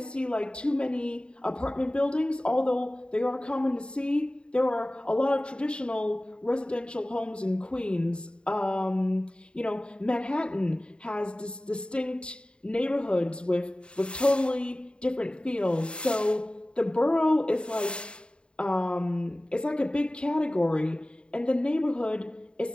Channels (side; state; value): right; late; 0.053 ms